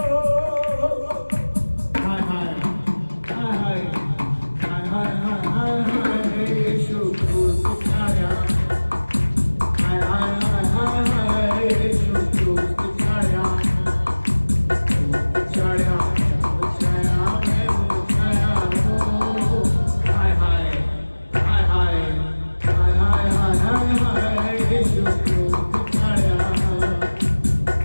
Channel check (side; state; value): both; inverted; correlation -1.00